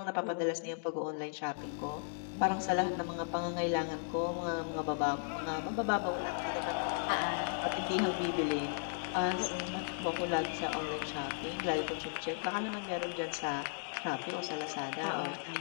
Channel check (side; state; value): right; silent; digital silence